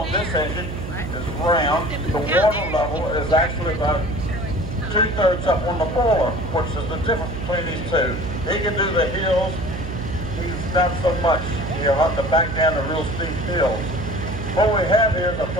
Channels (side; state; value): right; noise; hum, 7 dB below the sound